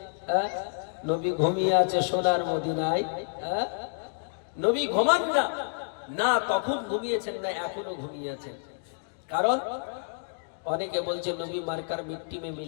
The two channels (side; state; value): right; silent; digital silence